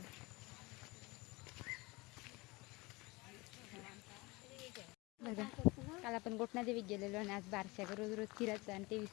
बघा काल आपण गोटनादेवीत गेलेलो आणि आज बारशाला रोज रोज फिरायचं आणि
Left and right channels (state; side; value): quieter; right; 23.7 dB